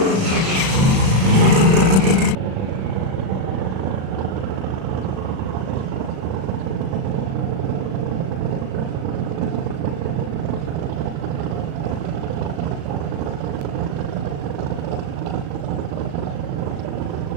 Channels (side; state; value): left; late; 37 ms